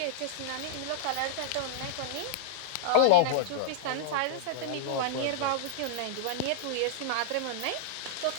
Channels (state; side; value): different; both; correlation -0.01